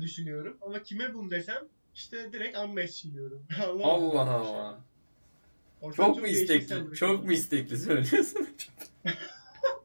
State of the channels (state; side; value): inverted; both; correlation -1.00